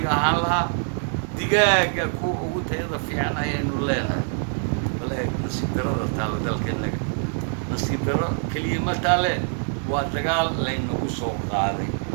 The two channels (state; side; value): silent; left; 62 dB below the other